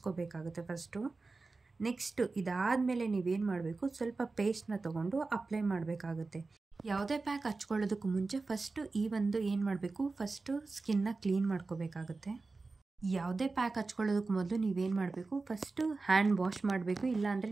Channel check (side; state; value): left; quieter; 3.8 dB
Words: ಫಸ್ಟು. ನೆಕ್ಸ್ಟು ಇದಾದಮೇಲೆ ನೀವೇನು ಮಾಡಬೇಕು, ಸ್ವಲ್ಪ ಪೇಸ್ಟ್ನ ತೊಗೊಂಡು ಅಪ್ಲೈ ಮಾಡಬೇಕಾಗುತ್ತೆ. ಯಾವುದೇ ಪ್ಯಾಕ್ ಹಚ್ಕೊಳ್ಳೋದಕ್ಕೂ ಮುಂಚೆ ಫಸ್ಟು ಈ ಒಂದು ಏನು ಮಾಡಬೇಕು, ಫಸ್ಟು ಸ್ಕಿನ್ನ ಕ್ಲೀನ್ ಮಾಡ್ಕೋಬೇಕಾಗುತ್ತೆ. ಯಾವುದೇ ಪ್ಯಾಕ್ ಹಚ್ಕೊಳ್ಳೋದಕ್ಕೆ ಮೊದಲು ನೀವೇನು ಮಾಡಬೇಕು, ಫಸ್ಟು ಹ್ಯಾಂಡ್ ವಾಶ್ ಮಾಡಬೇಕು, ಇಲ್ಲಾಂದರೆ